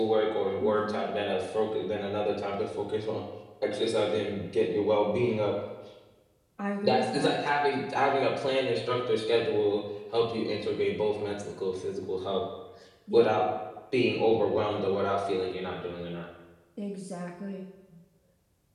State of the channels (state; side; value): identical; both; correlation 1.00